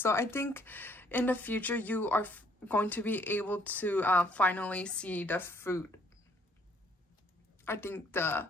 I think in the future you are going to be able to finally see the fruit. I think the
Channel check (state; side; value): normal; both; correlation 0.64